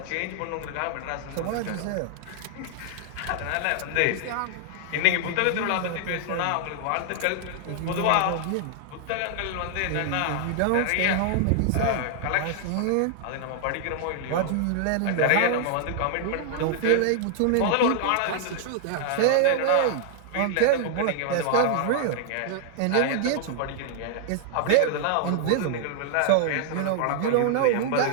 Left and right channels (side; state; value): both; different; correlation -0.01